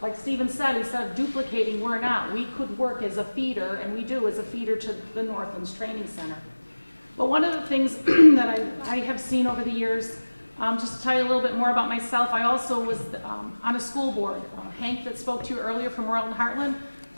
like Stephen said, instead of duplicating, we're not. We could work as a feeder, and we do as a feeder to the Northlands Training Center. But one of the things that I have seen over the years, just to tell you a little bit more about myself, I also was on a school board. Hank that spoke to you earlier from Royalton Heartland,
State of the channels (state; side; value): inverted; both; correlation -1.00